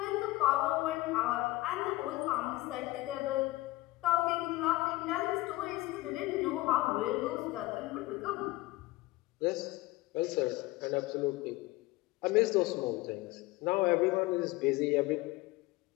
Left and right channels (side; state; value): right; quieter; 19.6 dB